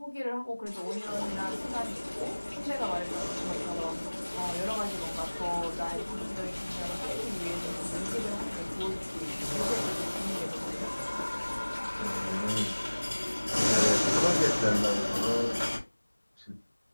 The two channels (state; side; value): inverted; both; correlation -1.00